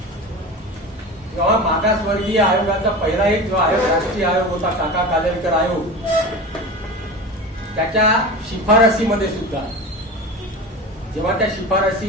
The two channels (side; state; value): both; normal; correlation 0.30